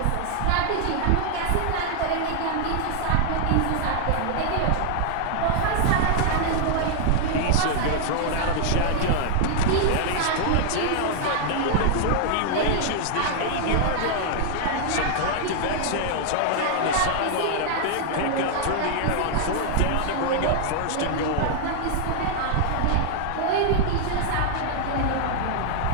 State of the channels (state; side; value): different; both; correlation -0.01